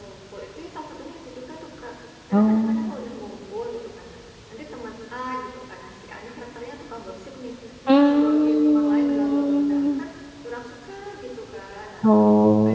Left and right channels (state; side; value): identical; both; correlation 1.00